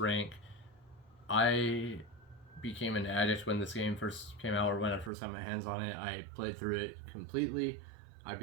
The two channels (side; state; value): left; drops out; at 5.1 s